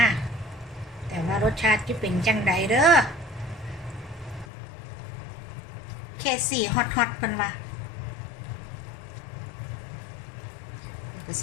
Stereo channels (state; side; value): drops out; right; at 4.5 s